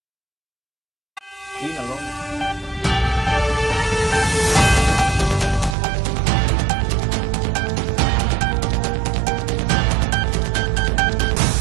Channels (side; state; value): left; drops out; at 5.8 s